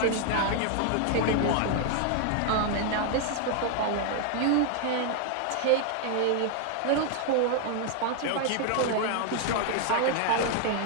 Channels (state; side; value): different; both; correlation 0.00